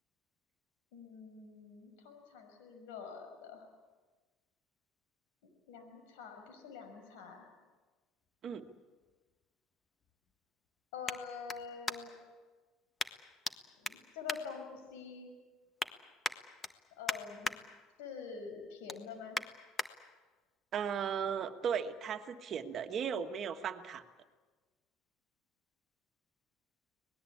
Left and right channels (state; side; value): normal; both; correlation 0.62